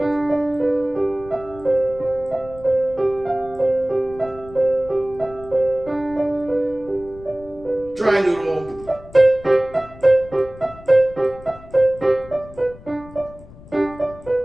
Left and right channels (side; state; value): left; noise; rumble, 19 dB below the sound